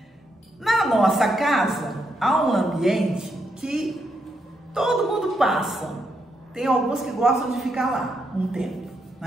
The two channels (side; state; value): both; normal; correlation 0.80